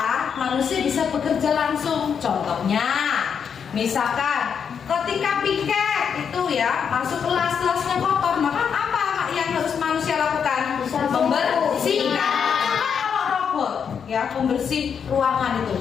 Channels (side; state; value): right; quieter; 7.1 dB